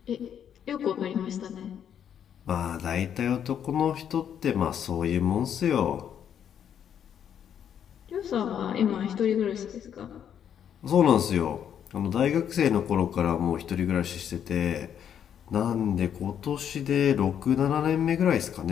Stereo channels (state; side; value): quieter; right; 9.0 dB